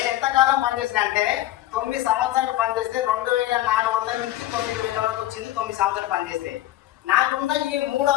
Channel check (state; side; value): quieter; right; 14.5 dB